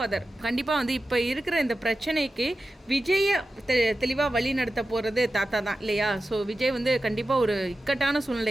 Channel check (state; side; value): normal; both; correlation 0.93